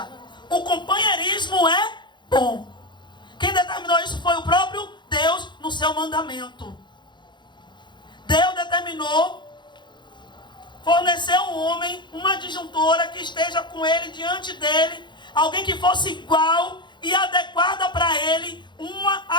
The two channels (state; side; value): late; right; 0.22 ms